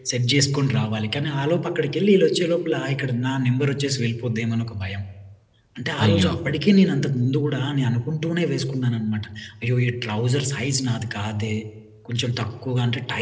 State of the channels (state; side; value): identical; both; correlation 1.00